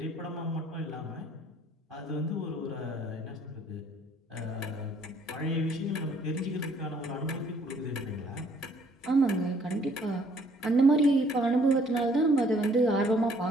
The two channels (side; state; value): both; normal; correlation 0.62